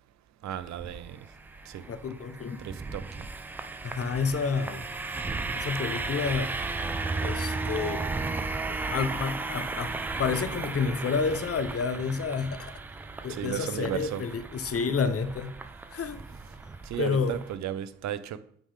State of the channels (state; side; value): normal; both; correlation 0.38